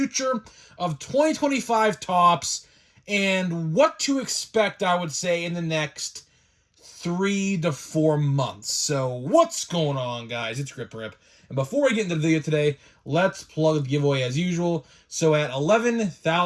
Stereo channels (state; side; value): identical; both; correlation 1.00